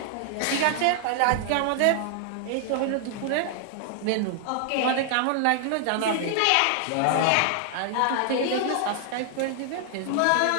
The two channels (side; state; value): both; different; correlation 0.00